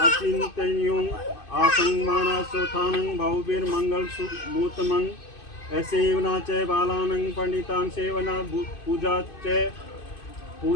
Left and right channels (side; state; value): right; late; 2.5 ms